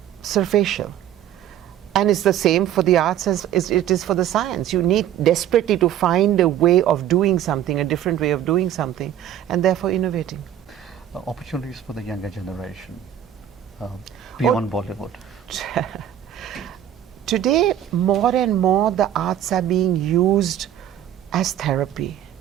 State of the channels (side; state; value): left; quieter; 10.9 dB